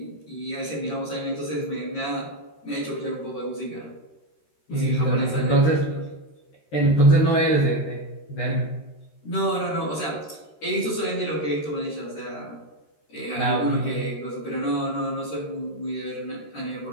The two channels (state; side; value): late; right; 13 ms